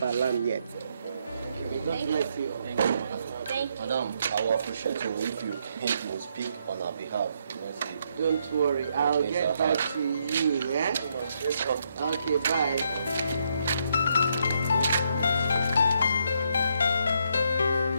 alarm yet. God bless you all. Thank you. Thank you. Madam, I will appreciate you if you will speak on our behalf. Don't worry, I'll get back to you, yeah? Okay, bye.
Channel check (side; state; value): both; inverted; correlation -0.76